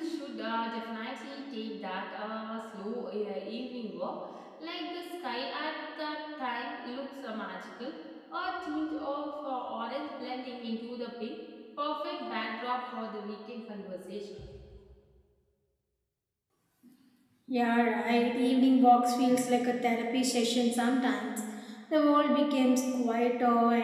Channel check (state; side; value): identical; both; correlation 1.00